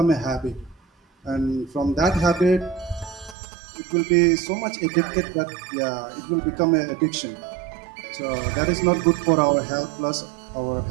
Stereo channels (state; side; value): drops out; left; at 3.4 s